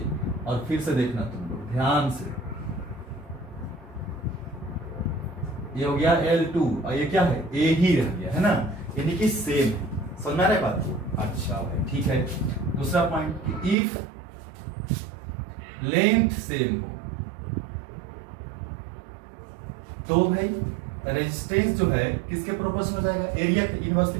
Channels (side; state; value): left; drops out; at 13.8 s